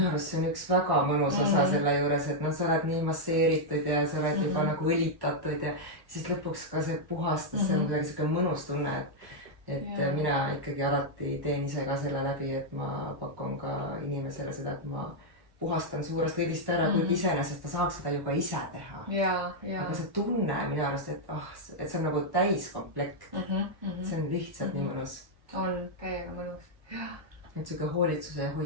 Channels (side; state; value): left; late; 1.1 ms